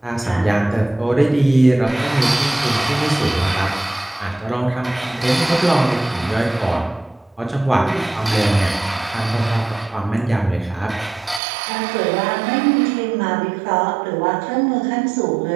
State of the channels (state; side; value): drops out; left; at 11.4 s